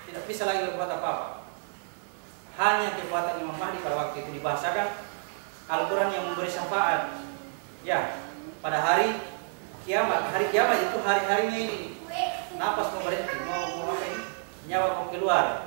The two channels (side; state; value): left; silent; 58 dB below the other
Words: Tidak bisa lagi berbuat apa-apa. Hanya kekuatan Imam Mahdi pada waktu itu dibahasakan Al-Quran yang memberi syafaat. Ya, pada hari kiamat. Hari kiamat itu hari-harinya ini. Napas mau berhenti, mau apa ini? Nyawa mau